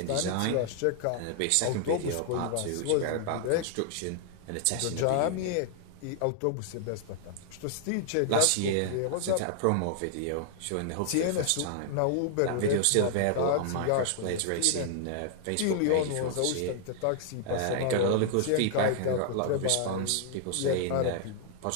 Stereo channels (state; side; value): different; both; correlation 0.00